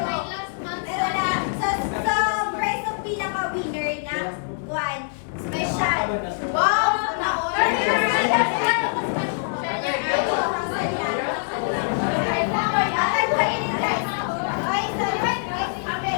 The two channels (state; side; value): silent; right; digital silence